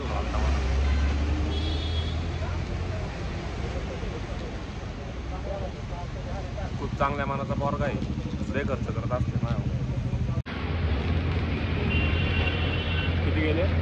आलता मला. खूप चांगल्या मनाचा पोरगा आहे, लय खर्च करत असते माझ्यावर. किती गेले?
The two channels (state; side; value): identical; both; correlation 1.00